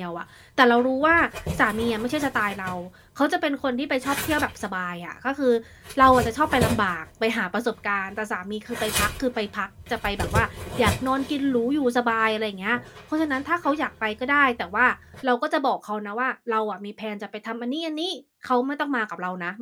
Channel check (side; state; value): both; identical; correlation 1.00